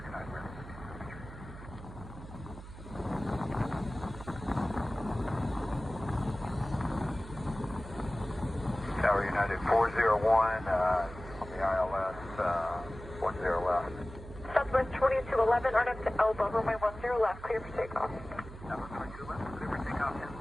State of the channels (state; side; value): noise; right; hum, 14 dB below the sound